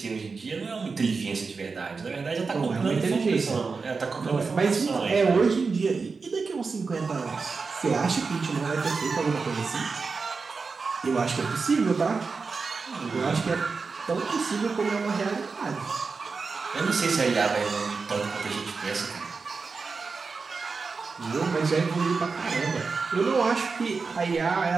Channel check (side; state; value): left; quieter; 4.6 dB